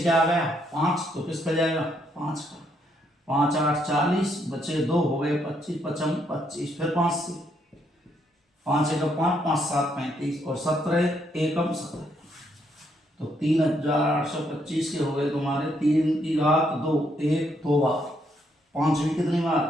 आ गया? 5, तो किस पे जाएगा? 5 का। 5 8 40, बचे 2 हो गए 25, 55 25। फिर 5 से 5 एकम 5, 5 7 35 और 17 एकम 17। तो 3825 के हो गए तुम्हारे 3 की घात 2, 1 2 बार, 5 भी कितनी बार?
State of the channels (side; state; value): both; normal; correlation 0.74